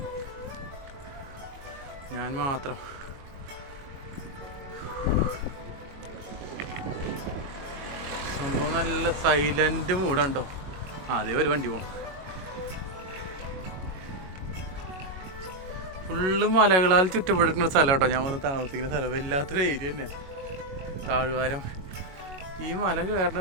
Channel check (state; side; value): late; left; 22 ms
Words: ഞാൻ മാത്രം. സംഭവം നല്ല സൈലന്റ് മൂഡുണ്ടോ. അതേ ഒരു വണ്ടി പോകണം. ഫുള്ള് മലകളാൽ ചുറ്റപ്പെട്ടിരിക്കുന്ന സ്ഥലം കേട്ടോ. ഞാൻ വന്ന് താമസിക്കുന്ന സ്ഥലം വല്ലാത്തൊരു ഏരിയ തന്നെ, താഴ്വാരം. ഈ മല